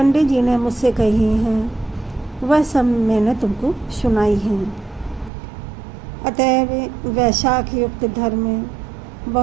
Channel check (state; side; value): drops out; left; at 5.3 s